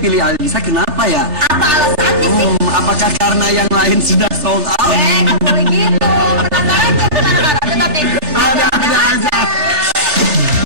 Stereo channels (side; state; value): left; late; 3.3 ms